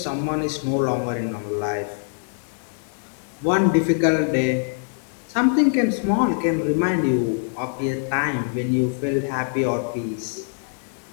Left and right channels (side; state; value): right; silent; digital silence